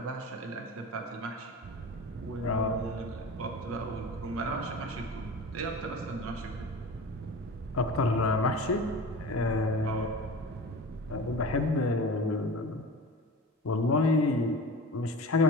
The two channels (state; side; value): normal; both; correlation 0.34